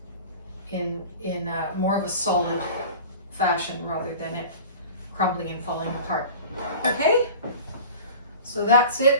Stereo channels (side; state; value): both; inverted; correlation -0.38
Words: in more of a solid fashion rather than it crumbling and falling apart. Okay, so that's